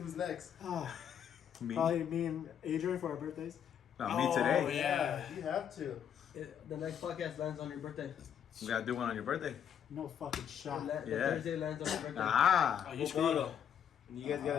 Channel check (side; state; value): right; quieter; 8.8 dB